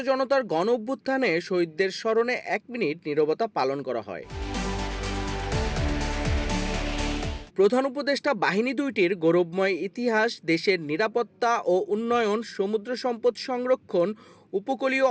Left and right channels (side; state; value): both; identical; correlation 1.00